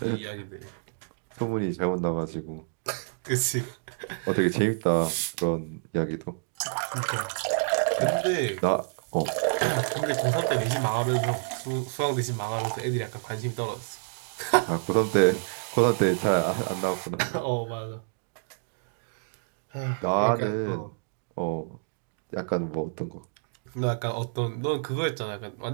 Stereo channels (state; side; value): silent; left; digital silence